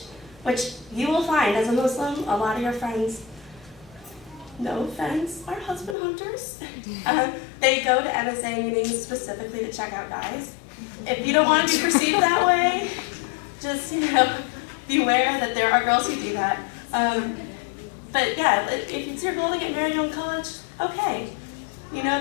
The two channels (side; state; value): right; drops out; at 6.0 s